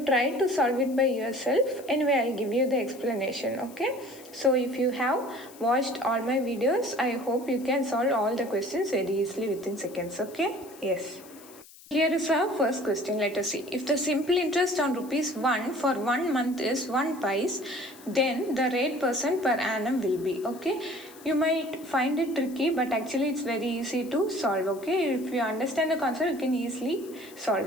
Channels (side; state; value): left; noise; hiss, 21 dB below the sound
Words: try to solve it by yourself. Anyway, I'll give you the explanation. Okay, so if you have watched all my videos, I hope you can solve all the questions very easily within seconds. Okay, yes. Here is our first question. Let us see. If the simple interest on ₹1 for 1 month is 1 pice, then the rate % per annum will be. Okay, you might find it tricky, but actually it's very easy to solve. Okay, if you understand the concept, you can easily